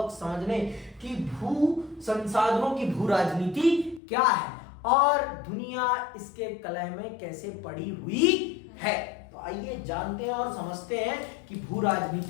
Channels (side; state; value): right; drops out; at 4.0 s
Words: समझने कि भू संसाधनों की भू राजनीति क्या है और दुनिया इसके कलह में कैसे पड़ी हुई है। तो आइए जानते हैं और समझते हैं कि भू